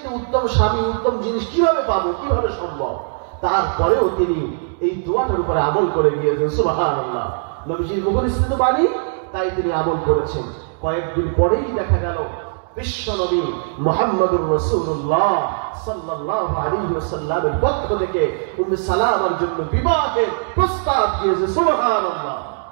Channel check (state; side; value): silent; left; digital silence